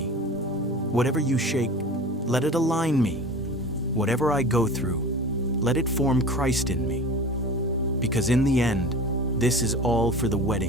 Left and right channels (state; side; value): normal; both; correlation 0.36